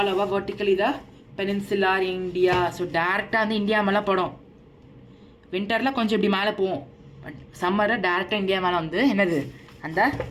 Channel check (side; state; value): both; identical; correlation 1.00